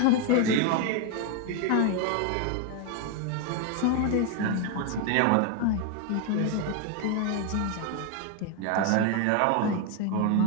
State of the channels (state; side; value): different; both; correlation 0.01